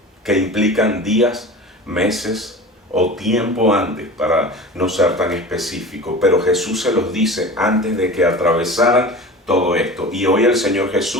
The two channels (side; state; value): both; normal; correlation 0.35